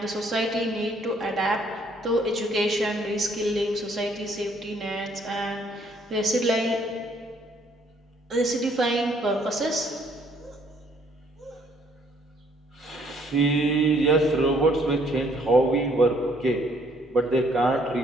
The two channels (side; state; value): both; normal; correlation 0.64